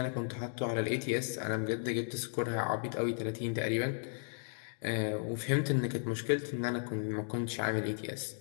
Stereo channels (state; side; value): silent; right; digital silence